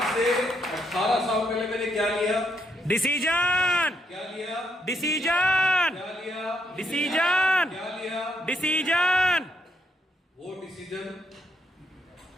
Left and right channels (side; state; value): both; normal; correlation 0.76